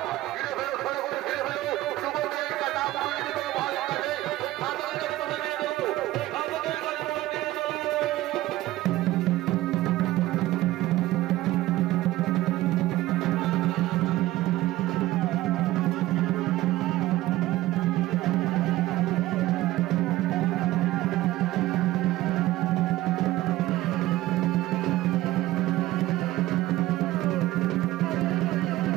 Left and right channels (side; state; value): left; quieter; 16.6 dB